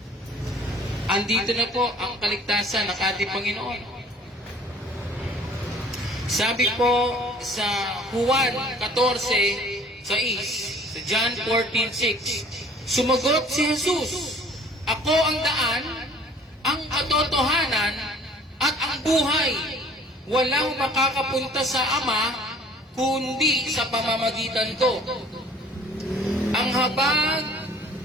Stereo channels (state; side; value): normal; both; correlation 0.52